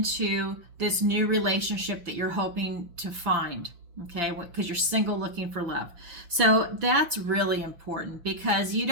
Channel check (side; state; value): left; late; 5.8 ms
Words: this new relationship that you're hoping to find, okay, because you're single looking for love. So that's really important, because you